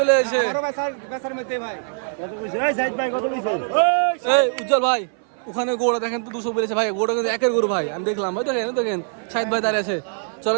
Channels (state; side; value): silent; left; 59 dB below the other